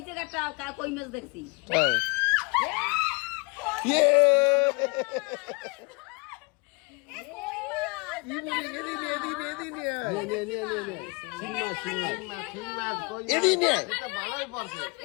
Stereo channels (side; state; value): right; quieter; 29.3 dB